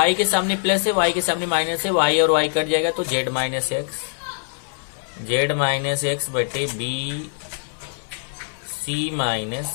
के सामने प्लस है, y के सामने माइनस है, y और y कट जाएगा तो z माइनस एक्स बटे b c माइनस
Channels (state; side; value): silent; right; digital silence